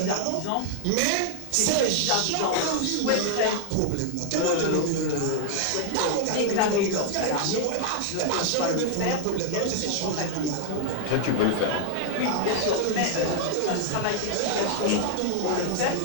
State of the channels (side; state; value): both; different; correlation 0.00